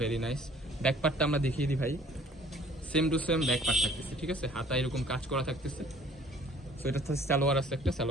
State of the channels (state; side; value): normal; both; correlation 0.55